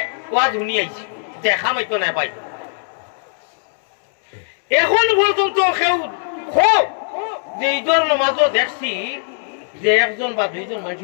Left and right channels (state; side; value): silent; right; 66 dB below the other